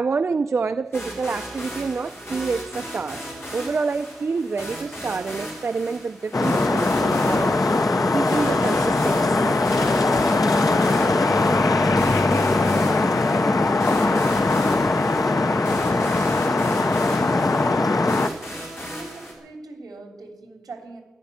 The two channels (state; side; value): normal; both; correlation 0.85